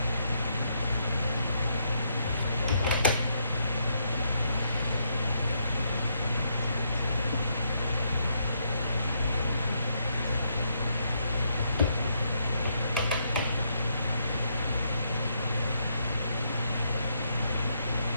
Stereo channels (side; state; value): both; inverted; correlation -0.76